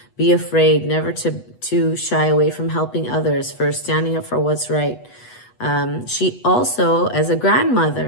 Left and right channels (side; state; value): right; late; 8.2 ms